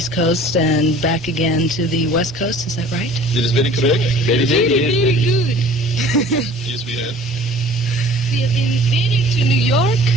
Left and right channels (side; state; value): both; normal; correlation 0.48